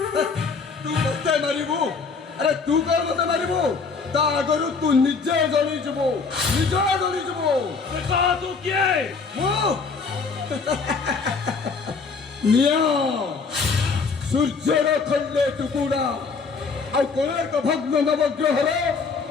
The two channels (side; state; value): right; quieter; 4.9 dB